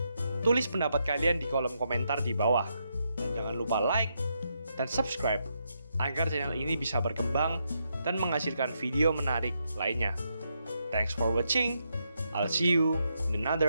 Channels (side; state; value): both; inverted; correlation -0.80